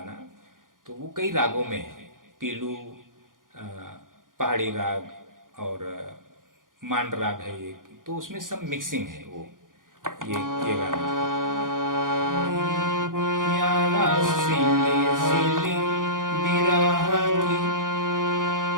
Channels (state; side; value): late; left; 0.90 ms